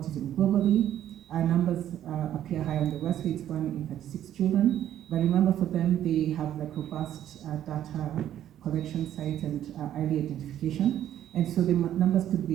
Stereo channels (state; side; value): quieter; left; 11.3 dB